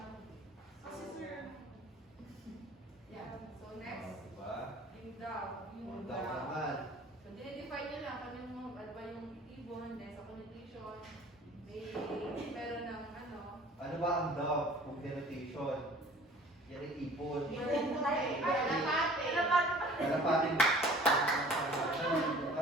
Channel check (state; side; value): normal; both; correlation 0.48